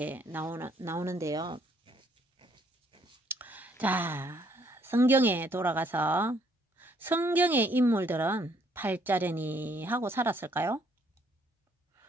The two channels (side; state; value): both; normal; correlation 0.67